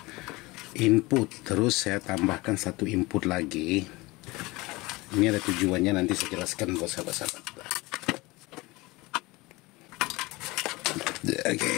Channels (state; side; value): quieter; right; 22.4 dB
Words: input, terus saya tambahkan satu input lagi. Ini ada tujuannya, nanti saya jelaskan buat sahabat-sahabat. Oke,